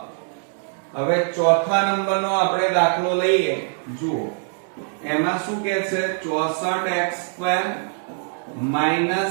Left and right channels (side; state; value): left; silent; 58 dB below the other